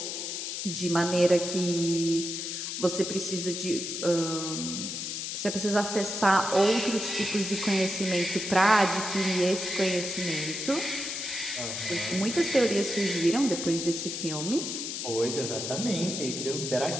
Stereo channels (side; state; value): left; noise; hiss, 4 dB below the sound